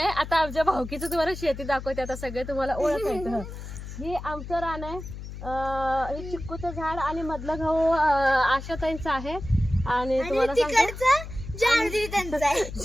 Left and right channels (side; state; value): left; noise; hum, 10 dB below the sound